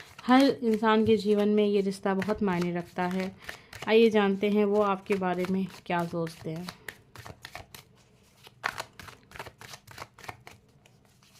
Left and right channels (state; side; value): identical; both; correlation 1.00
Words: हर इंसान के जीवन में ये रिश्ता बहुत मायने रखता है। आइए जानते हैं वो आपके बारे में क्या सोचते हैं।